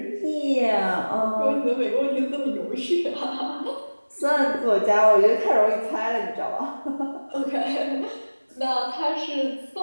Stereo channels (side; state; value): both; inverted; correlation -1.00